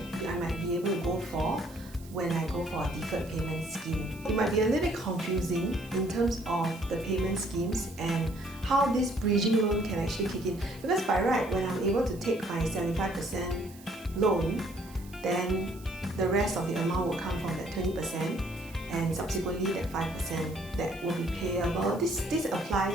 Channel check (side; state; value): right; noise; hiss, 22 dB below the sound